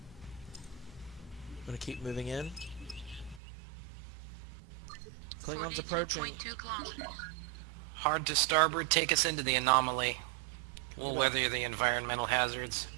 I'm gonna keep moving in. Klingons 42.2 approaching. kilometers. Hard to starboard, take us into the anomaly. We'll weather the environmental hazards.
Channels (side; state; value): left; drops out; at 3.4 s